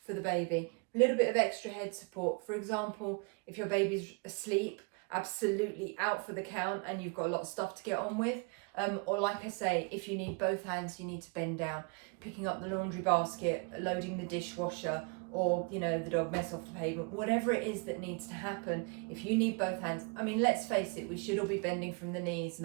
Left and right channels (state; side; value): quieter; left; 33.2 dB